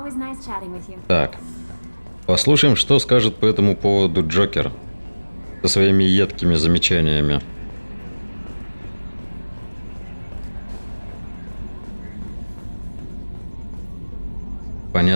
nice chatting with you. Так. Послушаем, что скажет по этому поводу Джокер. Со своими едкими замечаниями.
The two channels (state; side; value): inverted; both; correlation -1.00